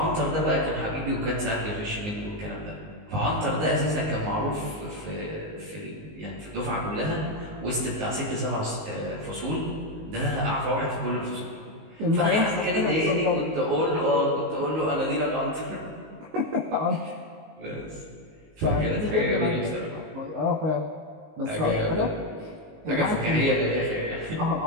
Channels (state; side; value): late; left; 19 ms